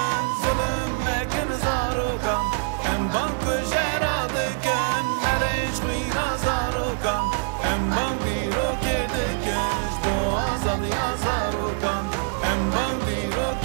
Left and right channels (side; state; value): left; silent; 62 dB below the other